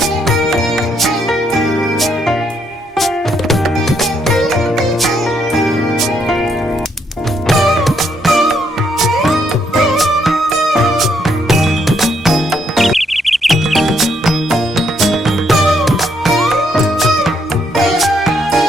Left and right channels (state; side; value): normal; both; correlation 0.74